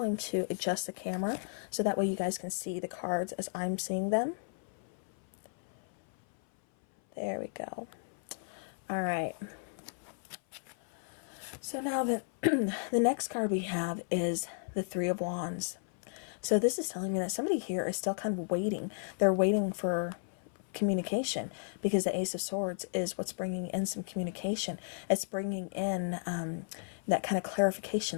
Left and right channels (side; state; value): right; silent; 55 dB below the other